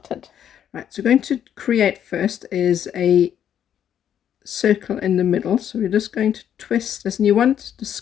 Right, so going to create first is a circle in the middle. So we're just going to twist this, and you want the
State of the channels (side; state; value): right; quieter; 9.5 dB